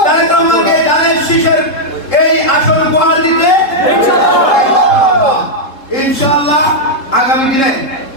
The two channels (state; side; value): late; right; 3.7 ms